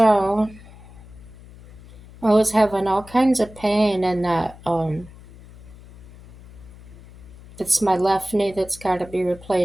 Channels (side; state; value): left; noise; hum, 20 dB below the sound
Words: I was having all kinds of pain in that it's my left knee that's got to be